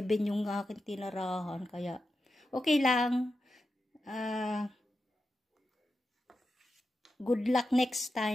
yung aking tinarahan. Kaya, okay lang. Good luck next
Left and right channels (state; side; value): normal; both; correlation 0.89